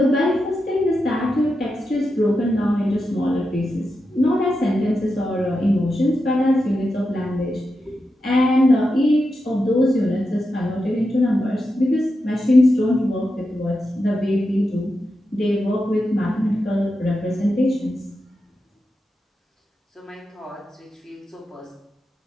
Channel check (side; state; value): both; normal; correlation 0.88